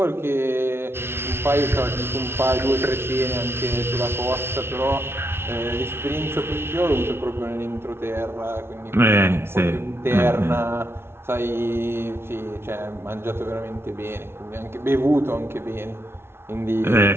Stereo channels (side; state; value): left; late; 0.12 ms